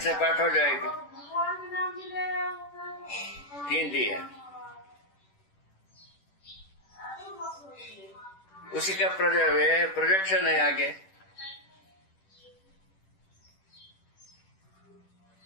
पाठ हो जाएगा। 3 दिए, उसी का प्रोजेक्शन है आगे।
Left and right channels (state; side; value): late; right; 10 ms